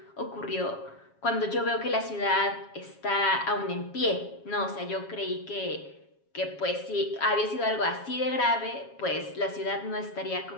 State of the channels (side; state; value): right; late; 7.2 ms